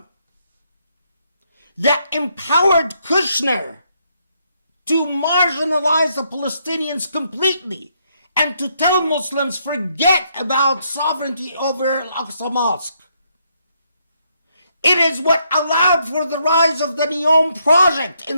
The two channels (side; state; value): both; inverted; correlation -0.75